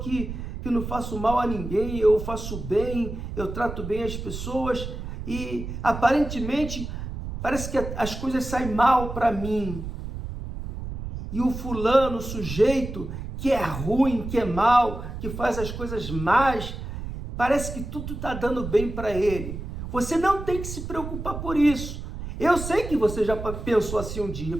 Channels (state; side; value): noise; right; rumble, 7 dB below the sound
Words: que não faço mal a ninguém, eu faço bem, eu trato bem as pessoas e aparentemente parece que as coisas saem mal para mim. E o fulano, o sujeito que é ruim, que é mal, que faz as coisas más, parece que tudo está dando bem para ele. Você não tem que se preocupar por isso. Eu sei que você já pensou assim um dia.